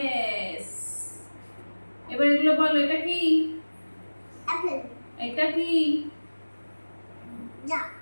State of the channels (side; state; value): both; inverted; correlation -1.00